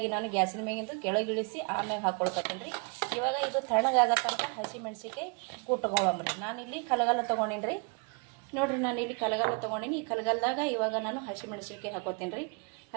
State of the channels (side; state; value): left; quieter; 34.9 dB